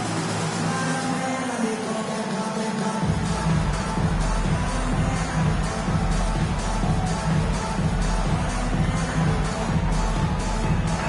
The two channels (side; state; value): both; identical; correlation 1.00